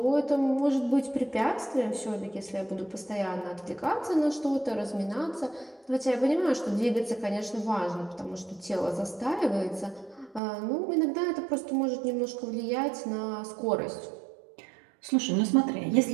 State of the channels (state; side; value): drops out; left; at 10.4 s